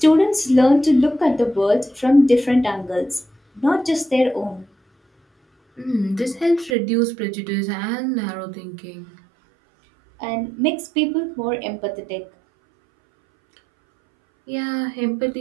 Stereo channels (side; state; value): left; drops out; at 6.8 s